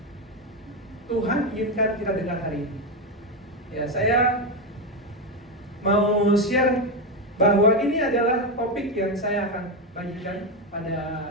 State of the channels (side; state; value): both; normal; correlation 0.10